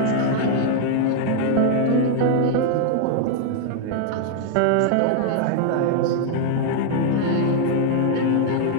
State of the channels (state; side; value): different; both; correlation 0.00